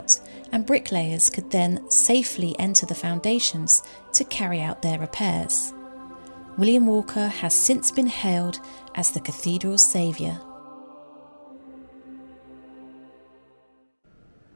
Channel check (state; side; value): inverted; both; correlation -1.00